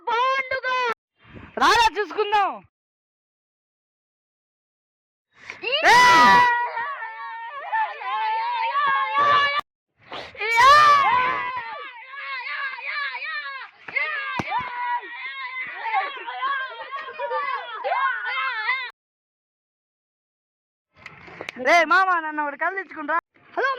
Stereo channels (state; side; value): identical; both; correlation 1.00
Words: బాండుగా? రారా చూసుకుందాం. రే మామ, నన్ను ఒకటి కళ్ళు తెచ్చుకుంటా. హలో